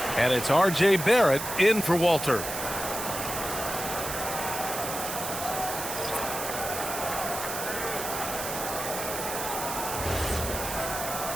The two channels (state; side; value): noise; right; hiss, 5 dB below the sound